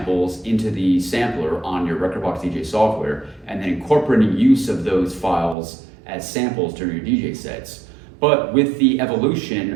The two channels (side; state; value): left; drops out; at 5.6 s